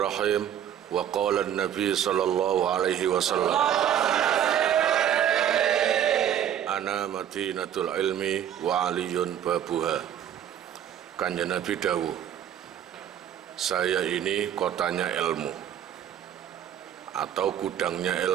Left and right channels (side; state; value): left; quieter; 10.0 dB